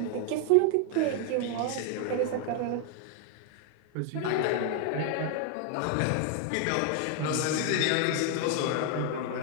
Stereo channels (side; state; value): both; different; correlation 0.00